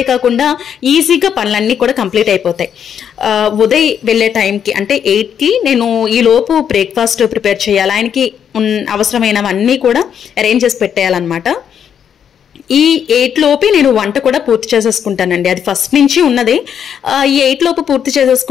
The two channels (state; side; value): quieter; right; 8.4 dB